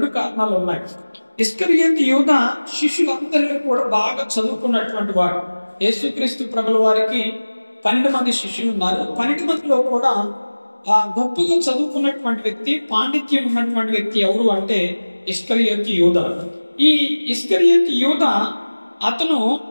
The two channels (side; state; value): both; inverted; correlation -1.00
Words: కారణాలు ఉన్నాయి. ఇస్కరియోతు యూదా శిష్యులందరిలో కూడా బాగా చదువుకున్నటువంటి వాడు. యేసుక్రీస్తు ప్రభుల వారికి 12 మంది శిష్యులు ఉన్నారు. 12 మందిలో కూడా గొప్పగా చదువుకున్నటువంటి వ్యక్తి, పాండిత్యం ఉన్నటువంటి వ్యక్తి ఎవరు అంటే ఇస్కరియోతు యూదా. ఈ ఇస్కరియోతు యూదా అతను